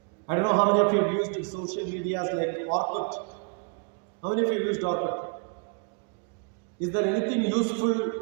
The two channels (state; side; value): quieter; left; 36.3 dB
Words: I don't know how many of you have used social medias like Orkut. How many of you used Orkut? Is there anything useful